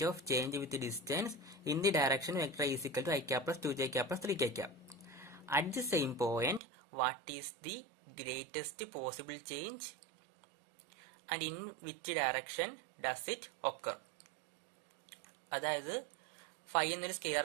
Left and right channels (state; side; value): drops out; left; at 6.6 s